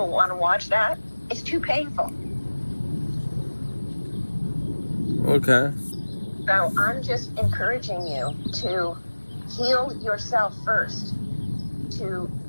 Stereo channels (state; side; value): inverted; both; correlation -1.00